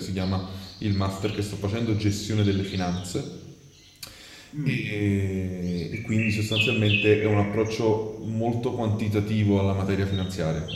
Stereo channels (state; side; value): identical; both; correlation 1.00